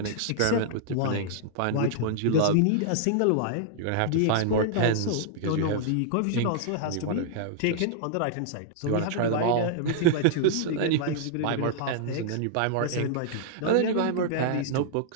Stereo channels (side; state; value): both; different; correlation -0.01